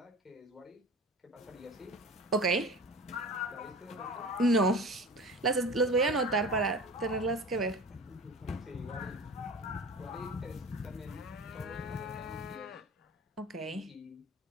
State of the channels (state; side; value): normal; both; correlation 0.36